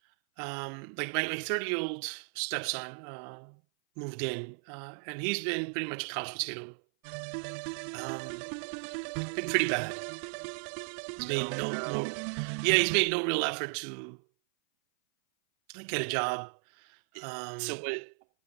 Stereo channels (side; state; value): left; silent; 55 dB below the other